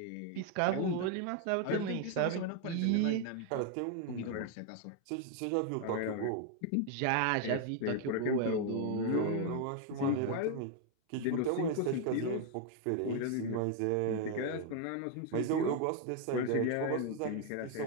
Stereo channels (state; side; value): different; both; correlation 0.00